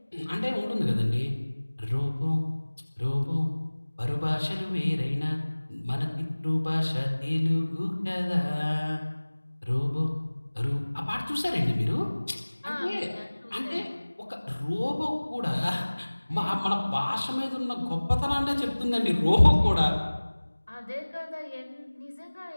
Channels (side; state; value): both; inverted; correlation -1.00